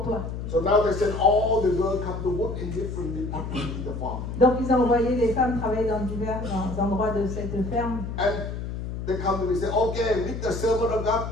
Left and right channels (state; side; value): noise; left; hum, 6 dB below the sound